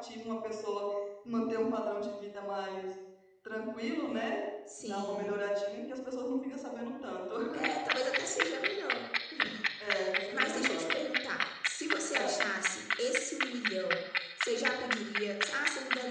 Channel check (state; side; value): identical; both; correlation 1.00